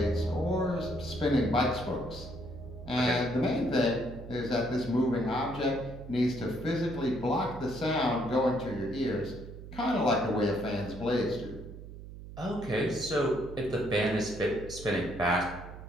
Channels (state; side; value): noise; right; hum, 13 dB below the sound